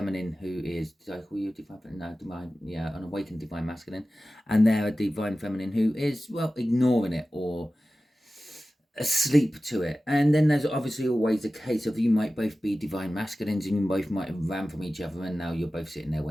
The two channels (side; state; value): both; normal; correlation 0.95